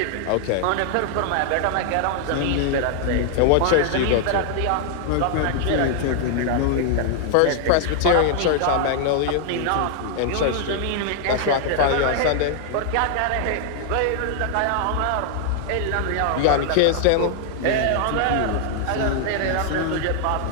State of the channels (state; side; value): different; both; correlation 0.00